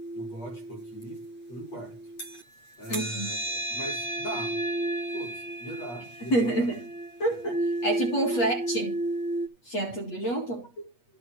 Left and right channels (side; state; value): right; late; 8.4 ms